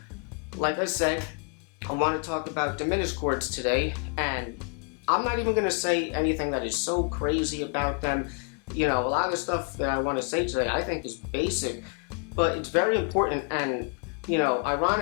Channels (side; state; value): right; quieter; 39.2 dB